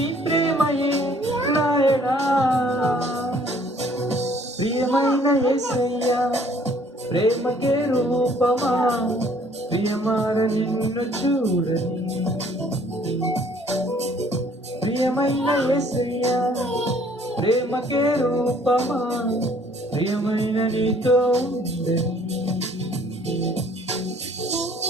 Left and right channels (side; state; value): both; normal; correlation 0.59